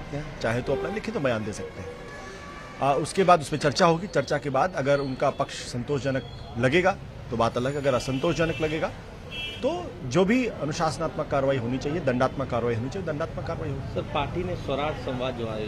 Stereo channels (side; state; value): both; identical; correlation 1.00